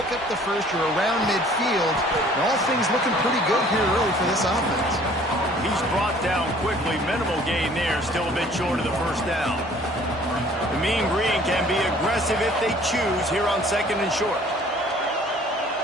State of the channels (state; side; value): normal; both; correlation 0.54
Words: up the first. You're around midfield. And all things looking pretty good here early for this offense. He's brought down quickly. Minimal gain there. Still a bit short of the first down. The Mean Green can be aggressive if they choose here on 2nd and short.